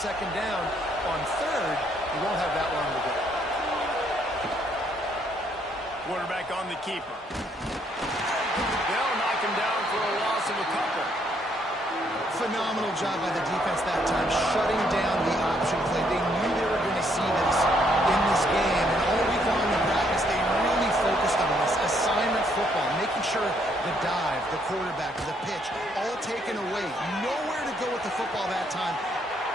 down, on 3rd, you won't have that long to go. Quarterback on the keeper. They'll knock him down for a loss of a couple. Phenomenal phenomenal job by the defense that time, shutting down the option play. They knew they were going to see this in this game, and all week long in practice, they really focused on this assignment football, making sure the dive, the quarterback, the pitch, all taken away. Nowhere to go with the football that time.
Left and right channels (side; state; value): both; normal; correlation 0.70